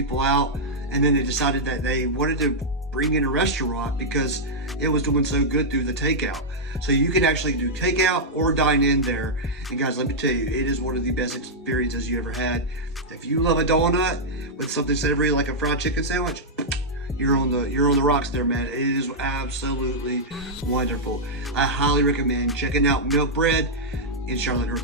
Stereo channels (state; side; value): normal; both; correlation -0.06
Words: out. And then they decided that they wanted to bring in a restaurant because it was doing so good through the takeout. So you can actually do takeout or dine in there. And guys, let me tell you, it is one of the best experiences you ever had. If you love a donut with something savory like a fried chicken sandwich, you're on the rocks there, man. It is absolutely wonderful. I highly recommend checking out Milkbread in Charlotte,